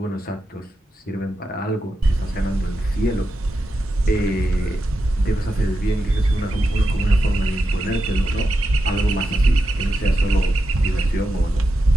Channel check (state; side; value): normal; both; correlation 0.88